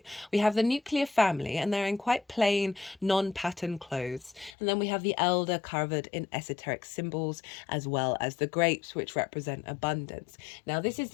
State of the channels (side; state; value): right; drops out; at 4.5 s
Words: We have the nuclear family, and they're in quite plain, non-pattern clothes. And then we have the elder covered in esoteric symbols, as well as the grapes, which represent abundance. Now, this is